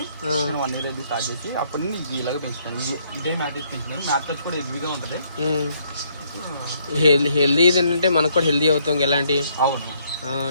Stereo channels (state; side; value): inverted; both; correlation -0.69